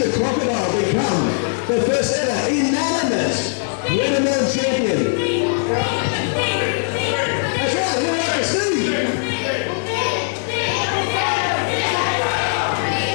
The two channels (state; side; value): silent; right; digital silence